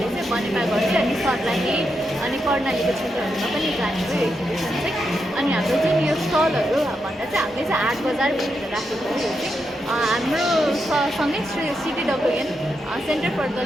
चाहिँ बनेपा गर्छ अनि सर्लाही अनि कर्णालीको क्षेत्रहरूमा पनि जाने हो एक्जिबिसन चाहिँ। अनि हाम्रो जुन यो स्टलहरू भन्दा चाहिँ हामीले चाहिँ 8 बजार भनेर राखेको हो। यो चाहिँ हाम्रो सँगै CTWN centre for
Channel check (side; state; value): both; normal; correlation 0.84